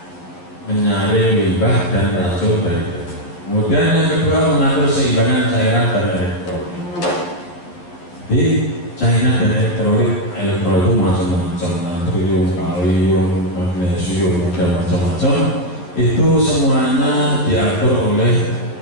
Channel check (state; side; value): late; right; 12 ms